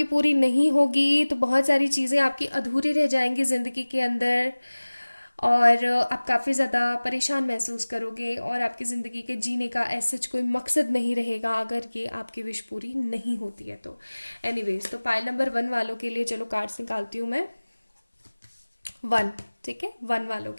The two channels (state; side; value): inverted; both; correlation -1.00